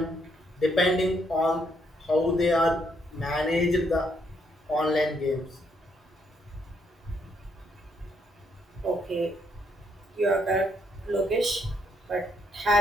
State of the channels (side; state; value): both; normal; correlation 0.73